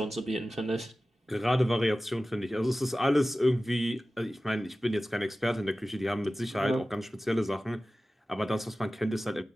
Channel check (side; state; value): both; normal; correlation 0.96